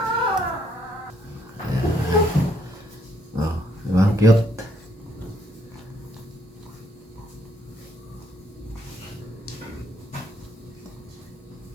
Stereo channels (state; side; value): normal; both; correlation 0.70